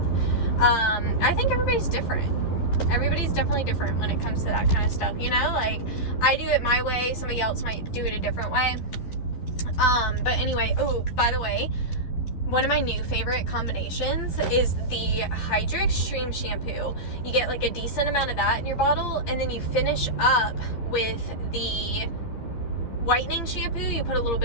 I think everybody's different. Everybody's definitely different when it comes to that kind of stuff, you know, like, I do it my way, somebody else might do it a different way. But anyway, oh, by the way, one of my new favorite combinations is the Hydra Extreme shampoo. You get like a decent amount of that in your bottle, and then you finish up with the whitening shampoo. You put a little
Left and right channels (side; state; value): right; late; 12 ms